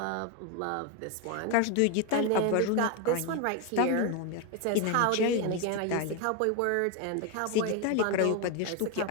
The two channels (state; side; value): different; both; correlation 0.02